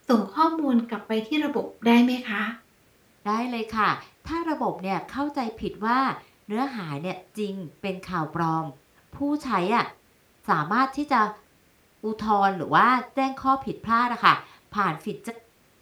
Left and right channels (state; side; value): identical; both; correlation 1.00